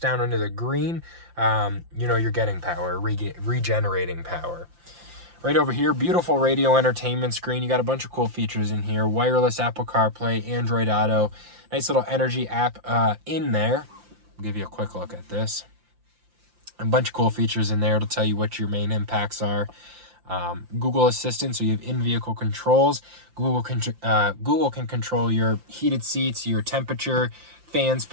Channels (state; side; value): late; left; 5.8 ms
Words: down into the green, you know you're getting power, regenerating power. Right over here, beautiful radio entertainment screen. You got a bunch of cool features in here. Wireless Apple CarPlay, Android Auto. Nice little energy app in there. I'll give you a quick look at this. A bunch of cool features in there. It'll tell you what your main impacts are. Google Assistant, so you have in-vehicle controls. Google can control your heated seats, your temperature, fan